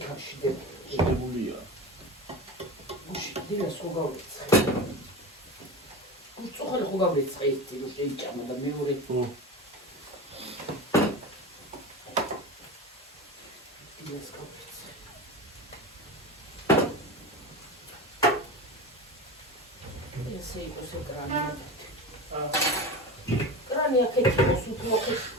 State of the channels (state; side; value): normal; both; correlation 0.28